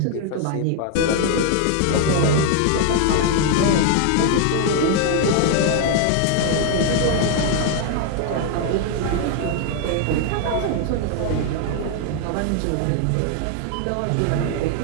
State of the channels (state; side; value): different; both; correlation 0.00